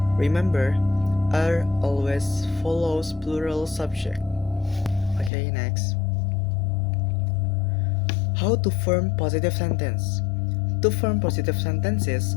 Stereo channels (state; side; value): drops out; right; at 5.3 s